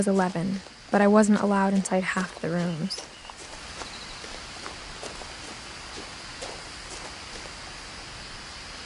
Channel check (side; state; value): both; identical; correlation 1.00